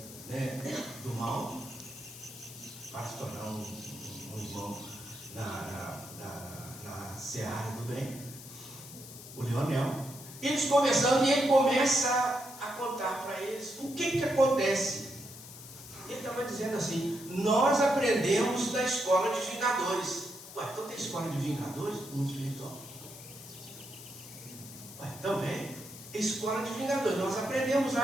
né, do mal, para se tornar um irmão na seara do bem, o Leonel. Eles conversando e ele começa a contar para eles o que acontece. Ele estava dizendo assim: nós aprendemos da escola de vingadores. Ué, então tem escola de vingadores no mundo espiritual? Ué, também, escola de vingadores, nós aprendemos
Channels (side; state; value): left; noise; hiss, 15 dB below the sound